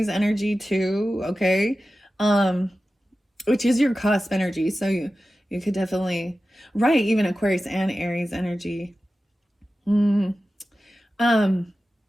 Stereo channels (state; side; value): normal; both; correlation 0.94